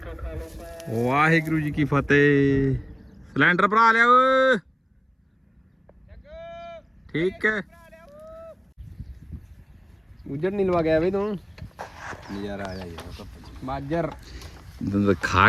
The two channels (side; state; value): both; identical; correlation 1.00